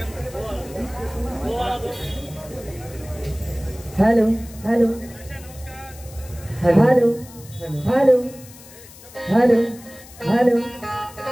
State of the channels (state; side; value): noise; left; hiss, 20 dB below the sound